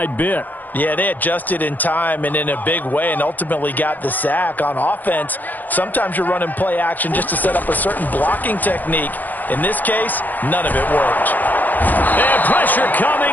bit. Yeah, they adjusted in time and in a big way and ultimately got the sack. On offense, sometimes you're running play action just to set up a certain blocking technique. In this case, none of it worked. And pressure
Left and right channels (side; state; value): right; late; 0.084 ms